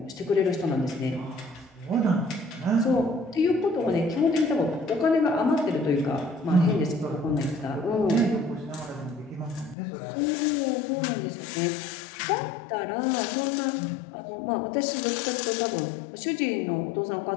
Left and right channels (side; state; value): right; drops out; at 9.8 s